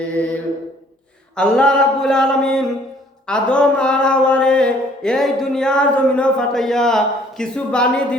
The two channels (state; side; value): normal; both; correlation 0.59